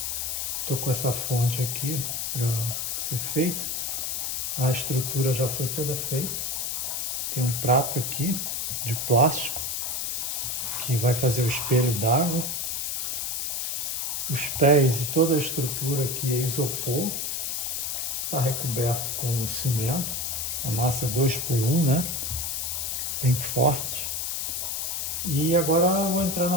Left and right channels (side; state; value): left; noise; hiss, 1 dB below the sound